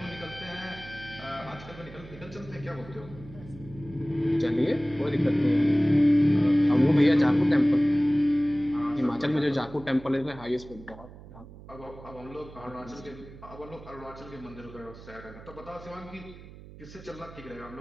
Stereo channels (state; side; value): noise; right; hum, 17 dB below the sound